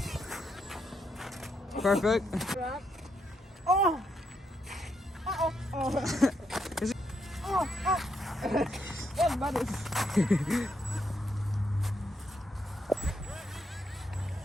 Perfect. Oh. Oh. Oh. Is it- Oh. Oh. Yes, buddy.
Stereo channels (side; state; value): both; normal; correlation 0.78